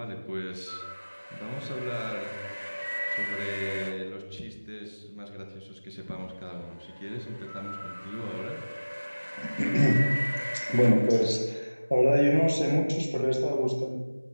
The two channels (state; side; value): inverted; both; correlation -1.00